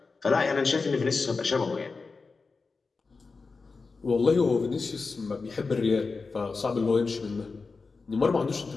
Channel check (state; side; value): quieter; right; 4.3 dB